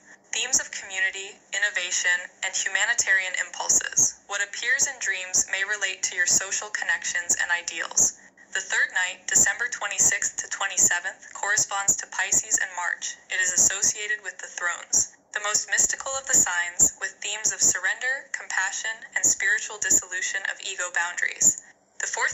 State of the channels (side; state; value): both; identical; correlation 1.00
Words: Themes of community, innovation, and humanitarian impulses. What appears in dreams may relate to your social connections and ideals. The third night, December 26th to 27th, corresponds to Pisces and March. It is associated with the thrones, the most mystical of the signs, with themes of surrender, compassion, and spiritual dissolution of ego boundaries. The